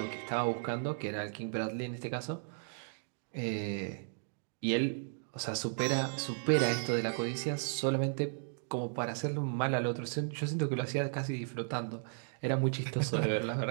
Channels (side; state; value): left; silent; digital silence